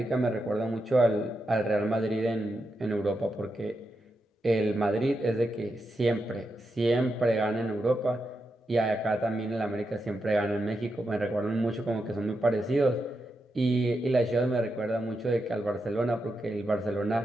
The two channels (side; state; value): both; normal; correlation 0.86